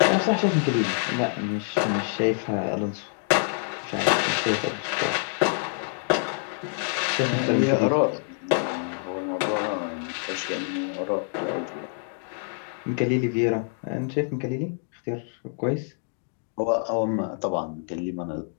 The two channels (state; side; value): silent; right; 61 dB below the other